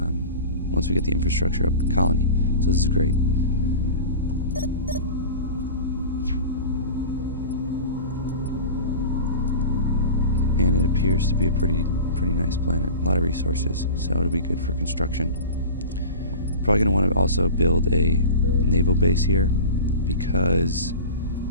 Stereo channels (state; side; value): inverted; both; correlation -0.33